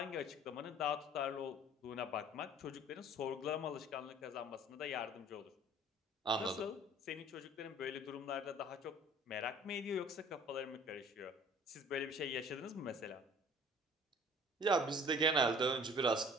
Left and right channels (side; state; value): both; normal; correlation 0.50